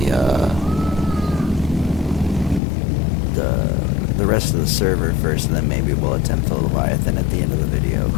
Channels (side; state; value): right; drops out; at 2.6 s